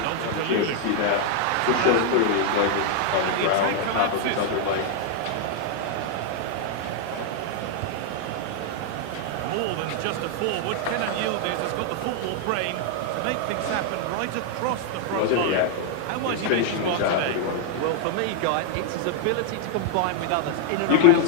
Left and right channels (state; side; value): different; both; correlation 0.00